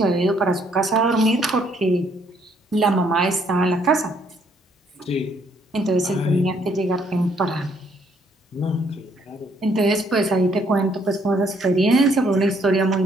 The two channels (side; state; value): both; normal; correlation 0.68